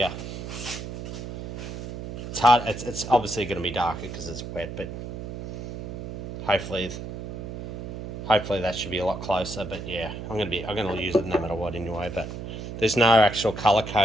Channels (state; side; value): noise; right; hum, 8 dB below the sound